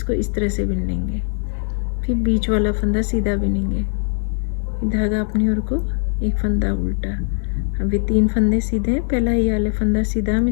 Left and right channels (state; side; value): silent; right; 56 dB below the other